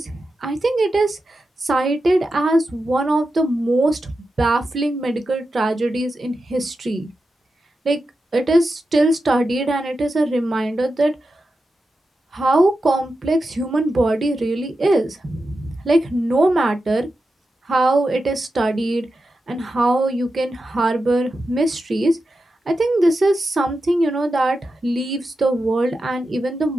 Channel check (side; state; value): both; normal; correlation 0.90